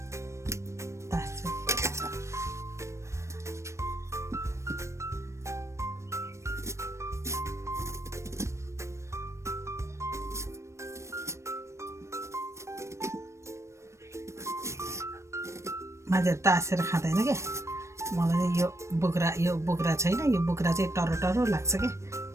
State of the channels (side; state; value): left; late; 0.14 ms